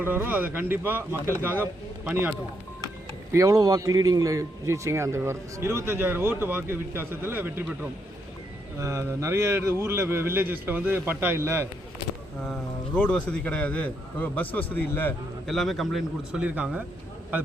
அதை கண்டிப்பா மக்களுக்காக பணியாற்றும். எவ்வளவு வாக்கு லீடிங்ல ஜெயிச்சிங்க? அந்த 25,000 ஓட்டு வாக்கு வித்தியாசத்தில் வெற்றி பெற்றோம். நிறைய ஊரில் வில்லேஜஸில் வந்து பட்டா இல்லை, ரோடு வசதி கிடையாது, பஸ் வசதி இல்லை, எல்லாமே கம்ப்ளைண்ட் கொடுத்து சொல்லியிருக்காங்க. அது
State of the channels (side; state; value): both; normal; correlation 0.77